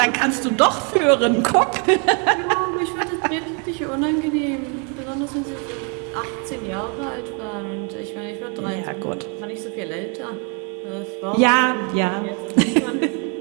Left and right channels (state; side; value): quieter; left; 37.1 dB